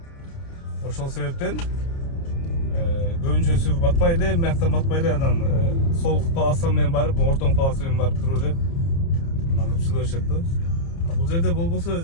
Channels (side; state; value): right; late; 30 ms